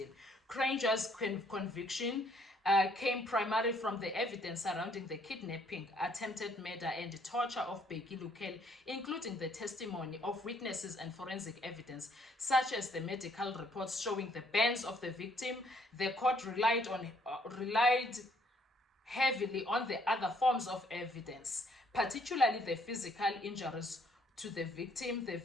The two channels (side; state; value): both; normal; correlation 0.66